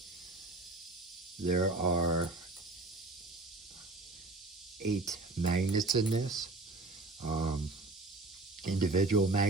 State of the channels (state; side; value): quieter; left; 3.2 dB